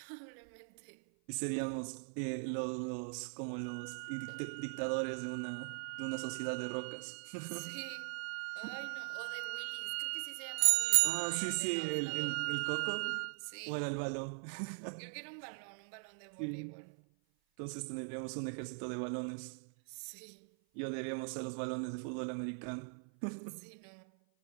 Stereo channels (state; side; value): silent; left; 51 dB below the other